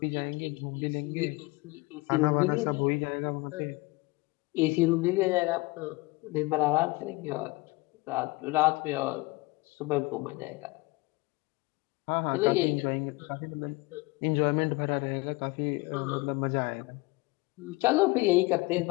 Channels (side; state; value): right; quieter; 23.3 dB